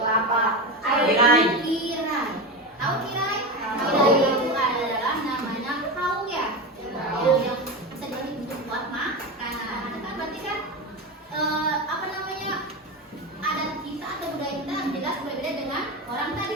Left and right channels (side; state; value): both; normal; correlation 0.20